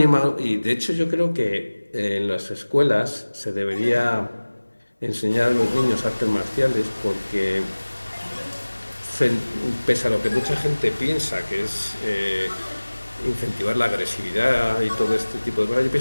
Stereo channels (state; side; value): inverted; both; correlation -1.00